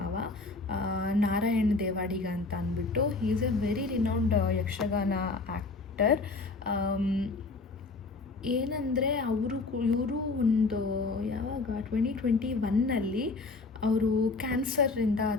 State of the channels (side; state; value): right; quieter; 3.8 dB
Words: ನಾರಾಯಣ್ ದೇವಾಡಿಗ ಅಂತ ಅಂದ್ಬಿಟ್ಟು. He is A very renowned Yakshagana actor. ಏನಂದರೆ ಇವರು ಒಂದು ಯಾವಾಗ 2021 ಅವರು ಕ್ಯಾನ್ಸರಿಂದ